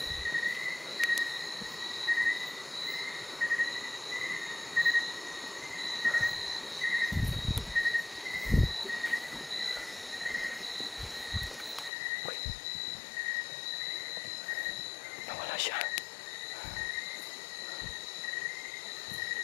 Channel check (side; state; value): right; drops out; at 11.9 s